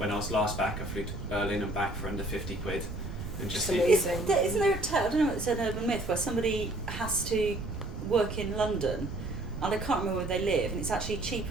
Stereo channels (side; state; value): right; noise; rumble, 8 dB below the sound